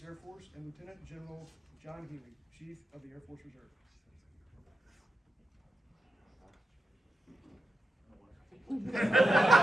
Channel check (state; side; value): normal; both; correlation 0.89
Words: Air Force, and Lieutenant General John Healy, Chief of the Air Force Reserve.